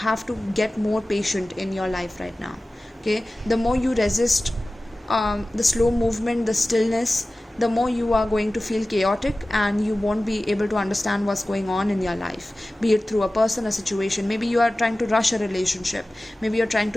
to get more patient in your life right now. Okay? The more you resist the slow movement, the stillness, the more you are going to feel chaotic, and you won't be able to understand what's going on in your life, be it through a person, a situation. Maybe you are trying to rush a relationship, maybe you're trying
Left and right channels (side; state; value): both; normal; correlation 0.96